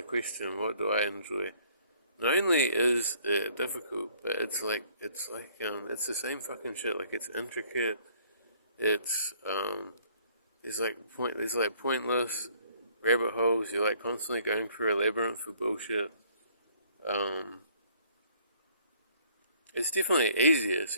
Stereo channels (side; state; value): both; inverted; correlation -0.61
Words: question, "What do I enjoy?" not only is it difficult, but it's the same fucking shit. Like it's intricate. It's there's like pointless rabbit holes. You're like constantly going through a labyrinth of bullshit. Um, it's definitely easier.